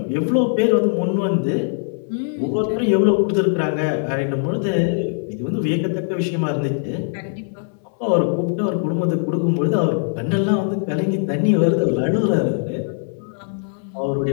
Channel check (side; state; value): right; silent; 65 dB below the other